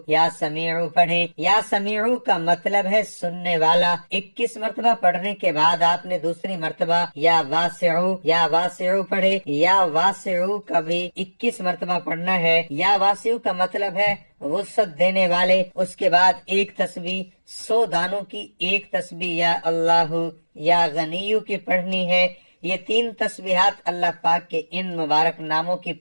یا سمیعو پڑھیں۔ یا سمیعو کا مطلب ہے سننے والا۔ 21 مرتبہ پڑھنے کے بعد آپ نے دوسری مرتبہ یا واسعو پڑھے۔ یا واسعو کا بھی 21 مرتبہ پڑھنا ہے۔ یا واسعو کا مطلب ہے وسعت دینے والے۔ اس کے بعد ایک تسبیح 100 دانوں کی ایک تسبیح یا اللہ یا غنیو کی پڑھنی ہے۔ یہ 3 تسبیحات اللہ پاک کے ان مبارک ناموں کی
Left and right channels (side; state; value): both; inverted; correlation -1.00